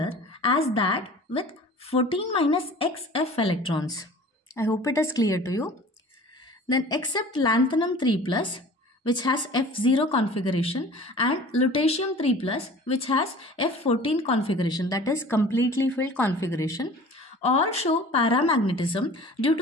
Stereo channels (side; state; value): both; normal; correlation 0.44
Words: as that with 14 minus X F electrons. I hope it is clear to you. Then except lanthanum 3+, which has F0 configuration, and lutetium 3+, which has F14 configuration, that is completely filled configuration, all show paramagnetism due